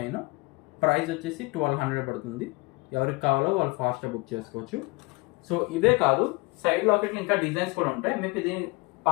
ప్రైస్ వచ్చేసి 1200 పడుతుంది. ఎవరికి కావాలో వాళ్ళు ఫాస్ట్గా బుక్ చేసుకోవచ్చు. సో ఇదే కాదు, సైడ్ లాకెట్లు ఇంకా డిజైన్స్ కూడా ఉంటాయి. మీకు ఇది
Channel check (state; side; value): quieter; right; 25.6 dB